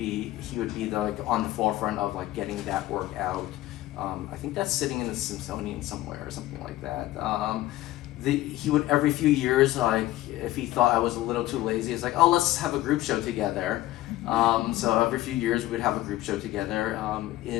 like on the forefront of like getting that work out. I think that's sitting in the Smithsonian somewhere or something like that. He would every few years, like if he thought I was a little too lazy, it's like, oh, let's have a group show together. So every few years we would have a group show together.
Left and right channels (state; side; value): quieter; right; 16.0 dB